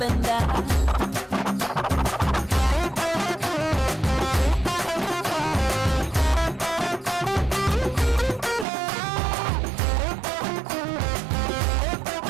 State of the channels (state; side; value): drops out; left; at 8.7 s